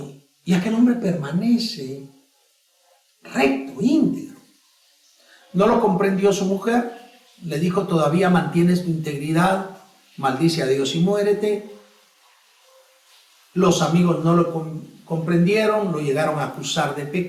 aquel hombre permanece recto, íntegro. No lo comprendió su mujer, le dijo: todavía mantienes tu integridad, maldice a Dios y muérete. Los amigos no lo comprendieron, lo llegaron a acusar de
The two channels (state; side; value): identical; both; correlation 1.00